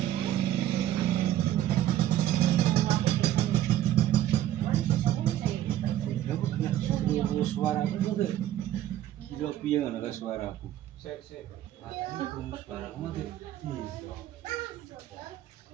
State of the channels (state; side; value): quieter; left; 12.6 dB